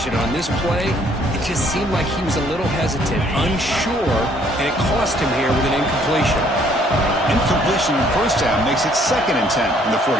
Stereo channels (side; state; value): both; normal; correlation 0.63